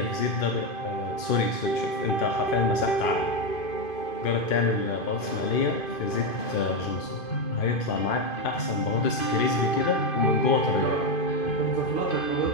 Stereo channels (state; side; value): late; right; 2.5 ms